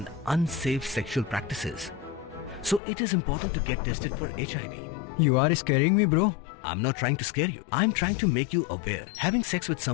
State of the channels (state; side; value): drops out; right; at 2.8 s